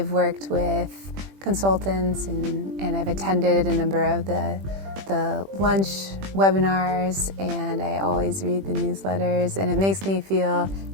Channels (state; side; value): late; left; 21 ms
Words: worked with consultants and I've attended a number of the lunch webinars, and I always read the newsletters, and it makes me feel